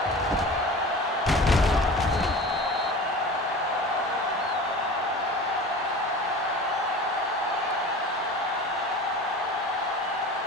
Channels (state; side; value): normal; both; correlation 0.37